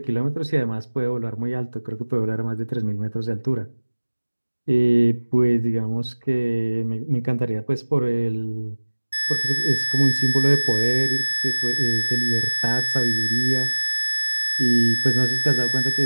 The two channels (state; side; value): inverted; both; correlation -1.00